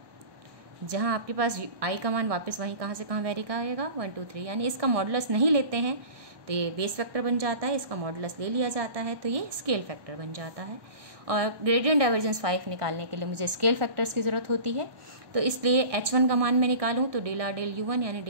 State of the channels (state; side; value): late; left; 1.2 ms